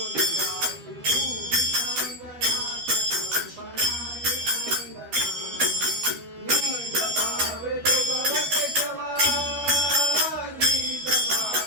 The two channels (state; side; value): late; left; 12 ms